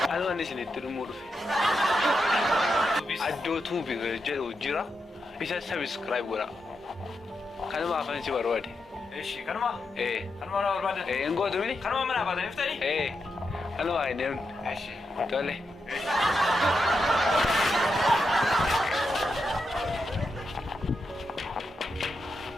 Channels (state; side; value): normal; both; correlation 0.86